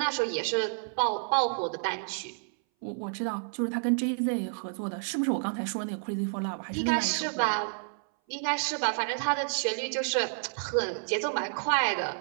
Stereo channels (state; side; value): silent; left; 58 dB below the other